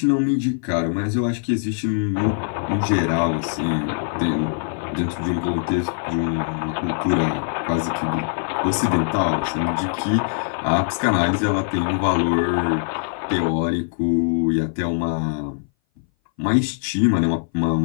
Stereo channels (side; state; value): right; silent; 59 dB below the other